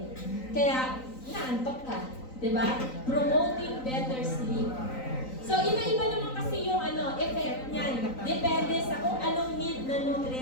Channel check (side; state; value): right; late; 3.9 ms